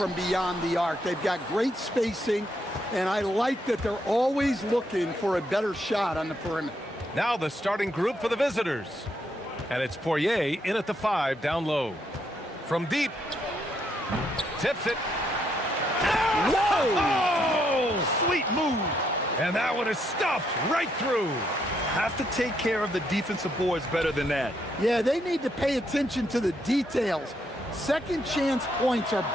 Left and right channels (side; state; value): both; normal; correlation 0.76